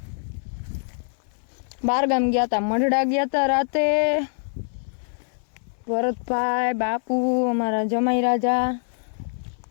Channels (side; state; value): right; silent; 62 dB below the other